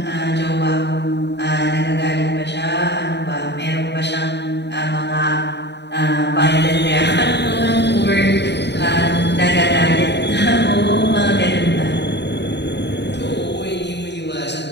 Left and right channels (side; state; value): right; late; 0.50 ms